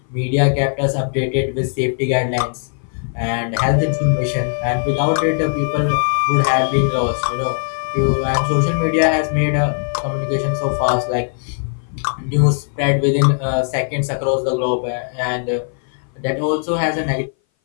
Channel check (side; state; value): right; silent; 59 dB below the other